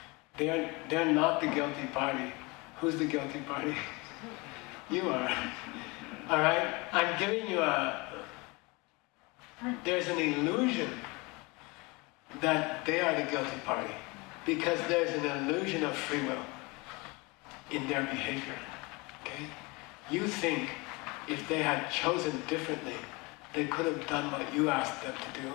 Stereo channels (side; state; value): right; quieter; 26.1 dB